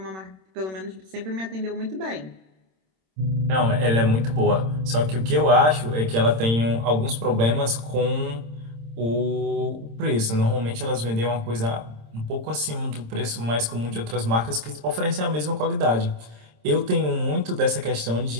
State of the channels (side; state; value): left; late; 26 ms